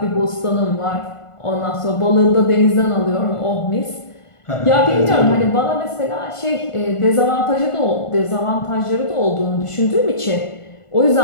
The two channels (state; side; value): late; right; 1.5 ms